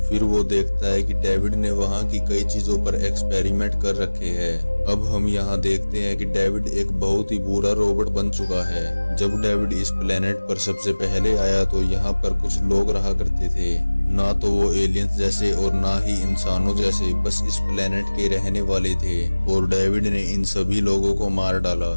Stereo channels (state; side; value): inverted; both; correlation -1.00